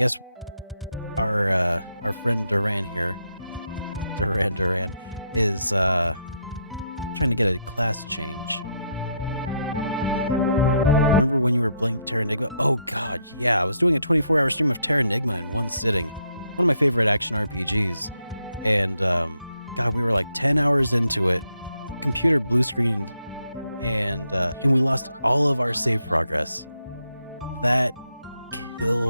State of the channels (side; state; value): both; inverted; correlation -0.76